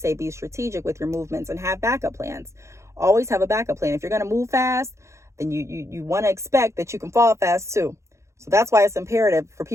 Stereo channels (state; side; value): late; left; 0.14 ms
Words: be strategic with your movements and have backup plans. Always have a backup plan. If you're going to move fast, then you want to expect that you can fall fast too. So that's why it's imperative for